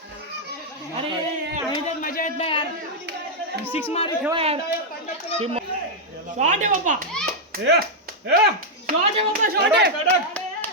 अरे मजा येत नाही यार. 6 मारे ठेवा यार. शॉट आहे बाप्पा. शॉट आहे.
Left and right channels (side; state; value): both; normal; correlation -0.03